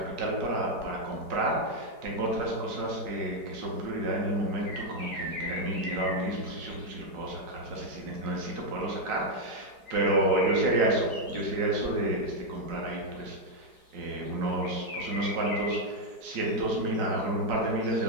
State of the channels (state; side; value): late; left; 4.8 ms